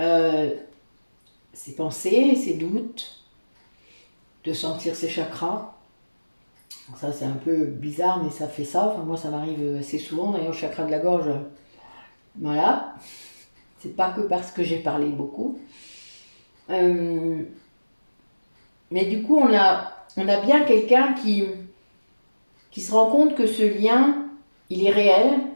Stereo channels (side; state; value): both; inverted; correlation -1.00